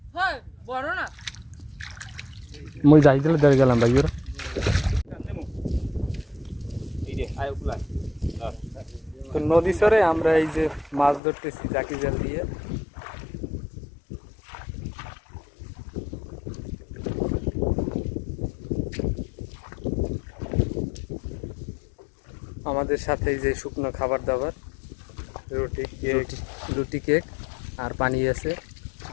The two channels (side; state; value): right; drops out; at 11.2 s